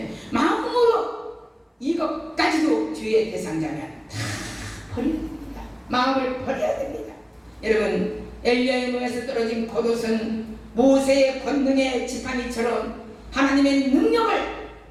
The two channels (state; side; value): identical; both; correlation 1.00